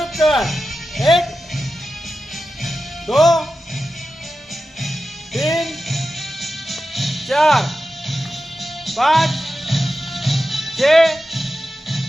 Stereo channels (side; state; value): both; normal; correlation 0.92